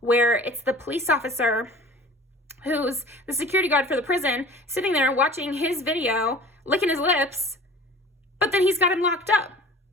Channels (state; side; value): normal; both; correlation 0.44